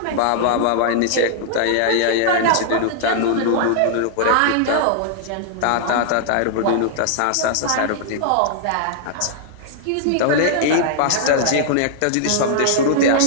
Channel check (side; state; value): both; different; correlation -0.01